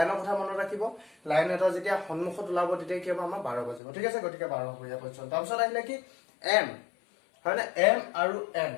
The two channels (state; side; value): drops out; right; at 3.8 s